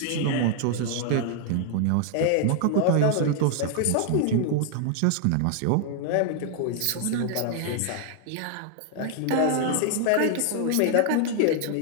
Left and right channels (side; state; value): both; different; correlation 0.00